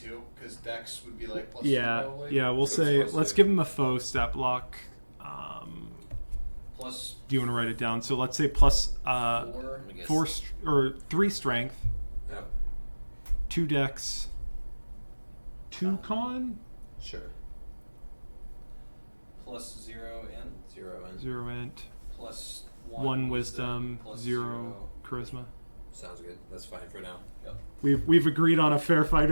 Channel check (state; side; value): inverted; both; correlation -1.00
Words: because Dex would be like plus 2 Yeah, probably. yeah. We'll So say it's let's plus give him a faux step block. Plus Do you want to write it down? So let's say plus 4. I guess. 4 or 3 strength, Yep. 2 dex, 2 con, Sure. Plus 0 in. 0 and 0 int, Plus 1 wisdom, plus 0 charisma. sounds good. That's fine for now. Yep. We've agreed on a fair